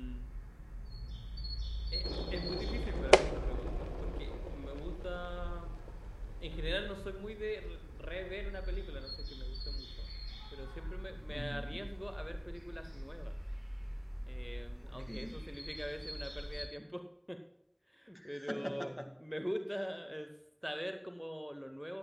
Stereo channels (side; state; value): both; identical; correlation 1.00